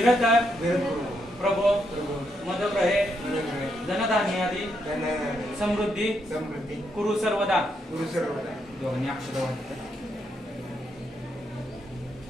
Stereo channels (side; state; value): both; normal; correlation 0.79